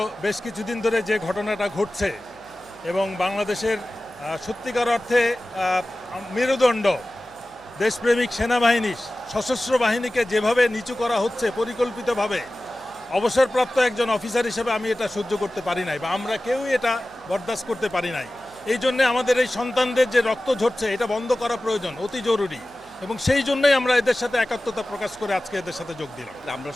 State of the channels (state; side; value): noise; left; hum, 29 dB below the sound